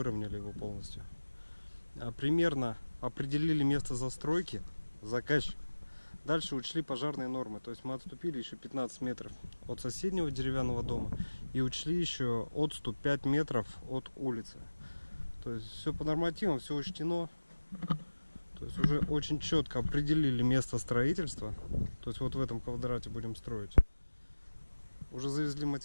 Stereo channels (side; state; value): both; inverted; correlation -1.00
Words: его полностью. Примерно определили место застройки, заказчик. Дальше учли пожарные нормы. То есть мы отступили еще 15 метров от соседнего деревянного дома и учли еще отступ 5 метров от улицы. То есть все по нормативам, все учтено. То есть уже очень четко определили место строительства. То есть вот в этом квадрате будем строить. Уже завезли